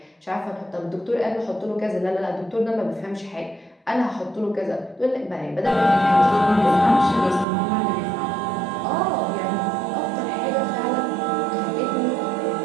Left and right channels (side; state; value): left; drops out; at 7.5 s